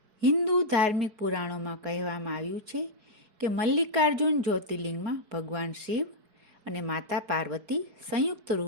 હિન્દુ ધાર્મિક પુરાણોમાં કહેવામાં આવ્યું છે કે મલ્લિકાર્જુન જ્યોતિર્લિંગમાં ભગવાન શિવ અને માતા પાર્વતી સંયુક્ત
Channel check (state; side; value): late; left; 4.7 ms